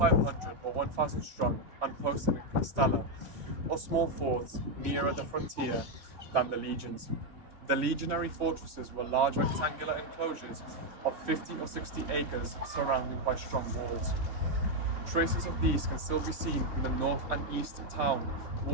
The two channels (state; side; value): late; left; 3.2 ms